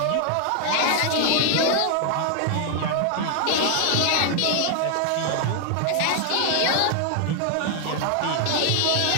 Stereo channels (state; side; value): different; both; correlation 0.00